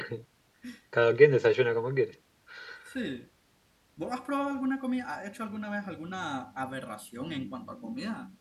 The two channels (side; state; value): both; identical; correlation 1.00